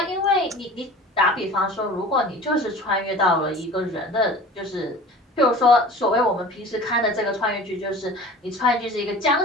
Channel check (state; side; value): normal; both; correlation 0.41